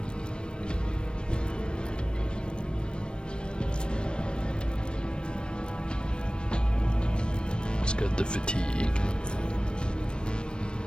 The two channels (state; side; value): late; right; 0.054 ms